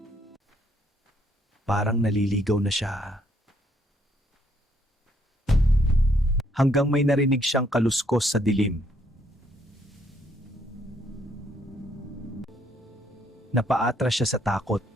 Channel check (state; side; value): normal; both; correlation 0.69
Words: Parang naliligaw na siya. Hanggang may narinig siyang kaluskos sa dilim. Napaatras siya sa takot.